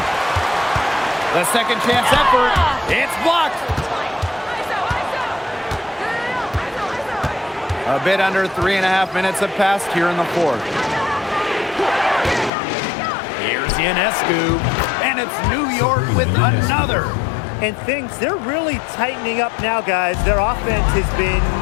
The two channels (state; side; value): drops out; right; at 12.5 s